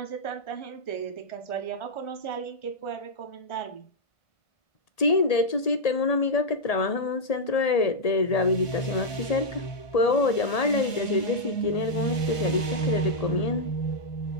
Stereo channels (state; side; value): late; right; 1.8 ms